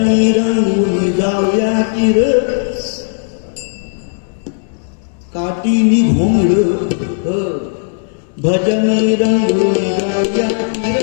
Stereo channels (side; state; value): right; silent; digital silence